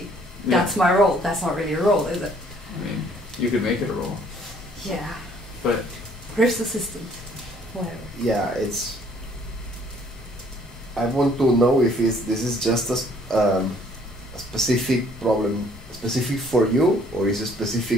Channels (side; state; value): both; normal; correlation 0.60